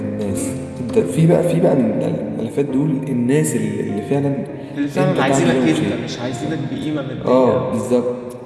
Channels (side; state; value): both; identical; correlation 1.00